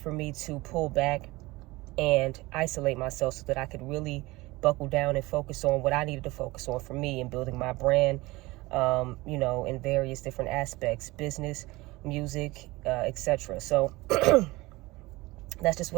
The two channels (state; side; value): quieter; left; 21.0 dB